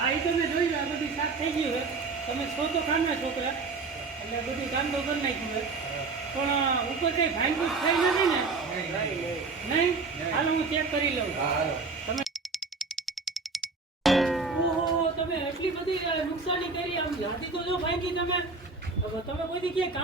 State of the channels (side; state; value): left; quieter; 4.2 dB